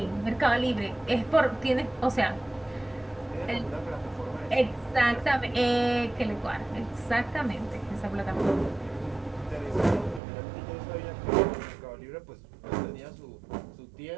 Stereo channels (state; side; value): drops out; left; at 10.2 s